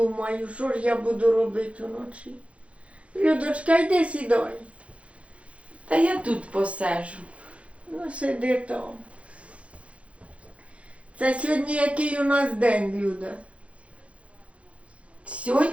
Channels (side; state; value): left; late; 0.063 ms